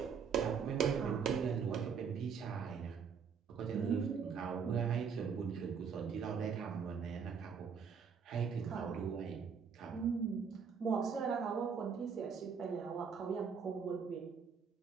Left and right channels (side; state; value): left; quieter; 6.4 dB